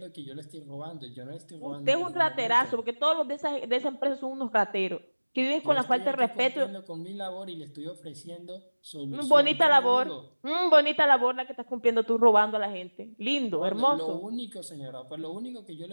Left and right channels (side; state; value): both; inverted; correlation -1.00